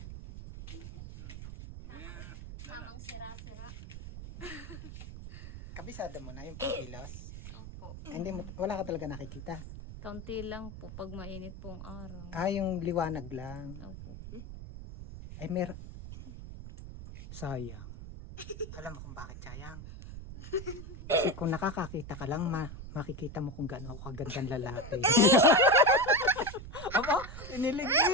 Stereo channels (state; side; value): noise; right; rumble, 11 dB below the sound